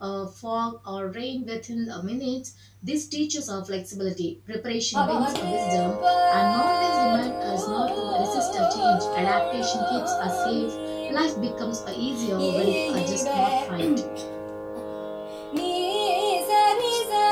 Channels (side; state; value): both; identical; correlation 1.00